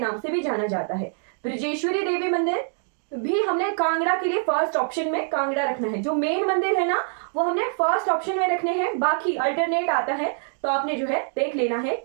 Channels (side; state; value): left; silent; 58 dB below the other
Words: से भी जाना जाता है। ब्रजेश्वरी देवी मंदिर भी हमने कांगड़ा के लिए फर्स्ट ऑप्शन में कांगड़ा रखना है। जो मेन मंदिर है ना वो हमने फर्स्ट ऑप्शन में रखने हैं, बाकी अल्टरनेट आता है तो आपने जो है देख लेना है